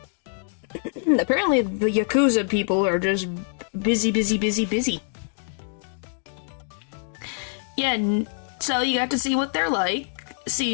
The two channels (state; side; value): silent; right; 62 dB below the other